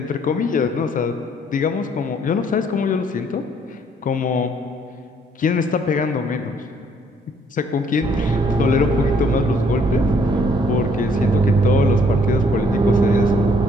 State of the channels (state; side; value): normal; both; correlation 0.64